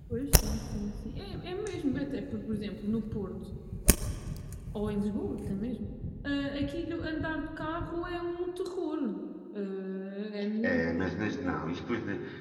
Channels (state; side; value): identical; both; correlation 1.00